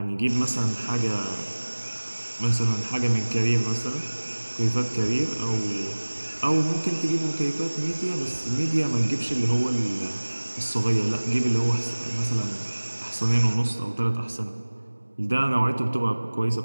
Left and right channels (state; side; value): inverted; both; correlation -1.00